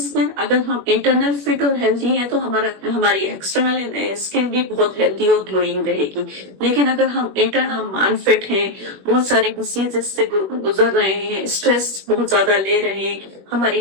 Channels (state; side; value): late; left; 21 ms